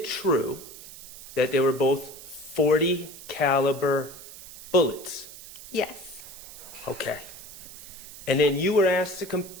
true that they were both .40 caliber bullets? Yes. Okay. And then you were asked to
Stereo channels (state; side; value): noise; right; hiss, 15 dB below the sound